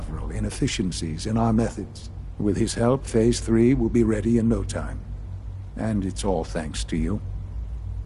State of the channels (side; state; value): both; identical; correlation 1.00